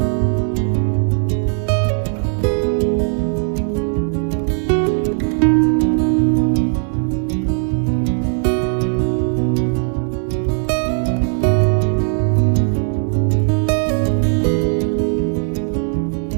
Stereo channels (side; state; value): left; silent; digital silence